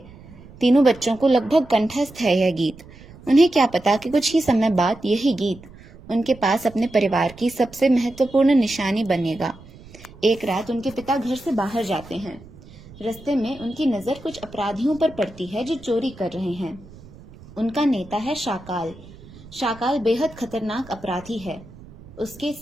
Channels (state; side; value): noise; right; rumble, 20 dB below the sound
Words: तीनों बच्चों को लगभग कंठस्थ है यह गीत। उन्हें क्या पता कि कुछ ही समय बाद यही गीत उनके पास अपने परिवार की सबसे महत्वपूर्ण निशानी बनेगा। एक रात उनके पिता घर से बाहर जाते हैं। रास्ते में उनकी नजर कुछ अपराधियों पर पड़ती है जो चोरी कर रहे हैं। उनका नेता है शाकाल। शाकाल बेहद खतरनाक अपराधी है। उसके